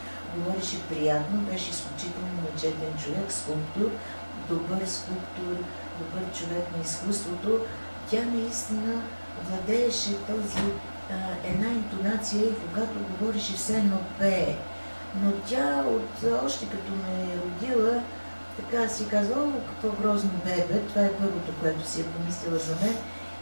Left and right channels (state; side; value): inverted; both; correlation -1.00